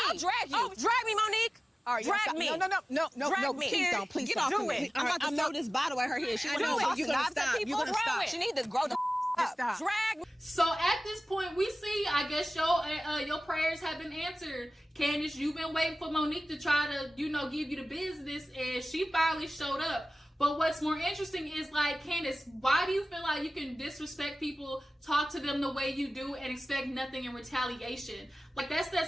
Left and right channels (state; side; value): normal; both; correlation 0.97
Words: I'll drag you. Oh, drag me, Monique. All right, drag me. No, me. Please don't. Please Get stop. Do it. I'm about to throw this bottle at her head. She wants You're gonna stop. She need to grow the up. Stop. Drag me. So at this point, we see, I guess your prayers have been answered. Candiace, you've been waiting for Monique to try to, give you the business, and she finally showed up. But what's more interesting is, like, Candiace, why do you feel like you can disrespect people, talk to them the way you do, and expect nothing in retaliation? Like, that's that